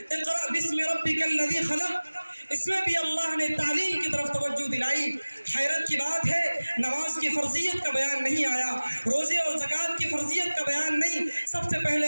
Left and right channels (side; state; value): both; inverted; correlation -1.00